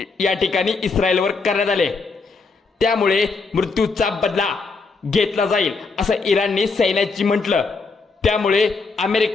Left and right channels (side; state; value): right; quieter; 4.3 dB